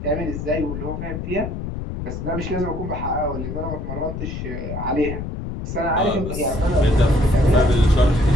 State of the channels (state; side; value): noise; left; rumble, 6 dB below the sound